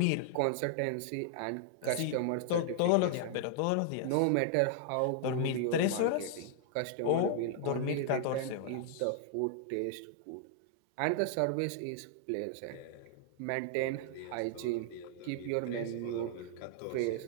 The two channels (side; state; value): both; different; correlation -0.01